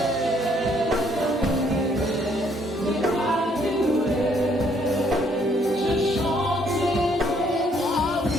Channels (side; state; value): both; normal; correlation 0.67